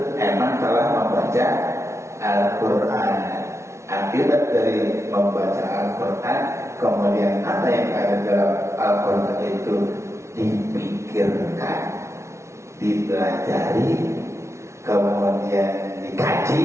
emang telah membaca Al-Quran. Akibat dari membaca Al-Quran, kemudian apa yang ada dalam Al-Quran itu dipikirkan, dipelajari, kemudian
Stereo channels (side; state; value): left; late; 0.13 ms